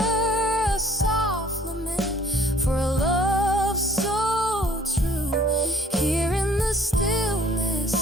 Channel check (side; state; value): both; normal; correlation 0.55